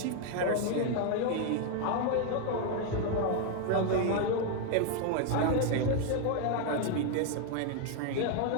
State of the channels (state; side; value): different; both; correlation 0.00